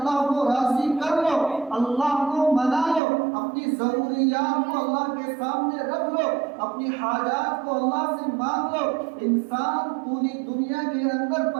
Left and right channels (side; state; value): left; drops out; at 3.0 s